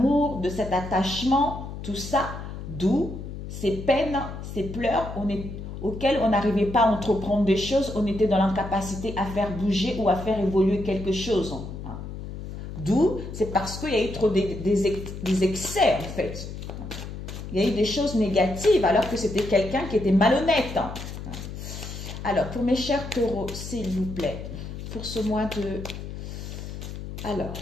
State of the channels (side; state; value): left; noise; hum, 9 dB below the sound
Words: de cet attachement, tout ça, d'où ces peines, ces pleurs auxquels on n'arrivait pas à entreprendre des choses, on était dans l'incapacité à faire bouger ou à faire évoluer quelque chose. D'où, c'est parce qu'il y a eu trop des excès en fait. Il y a eu des choses négatives alors que c'était quelqu'un qui était malhonnête. Alors, pour mes chers taureaux, s'il vous plaît, pour ce mois de... Alors,